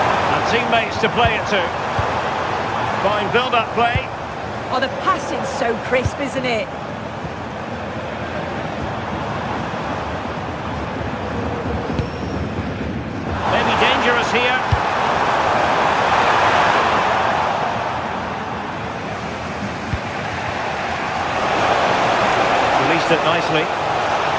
And teammates to play it to. Fine build-up play. Oh, the passing's so crisp, isn't it? Maybe dangerous here. Released it nicely.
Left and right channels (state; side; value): identical; both; correlation 1.00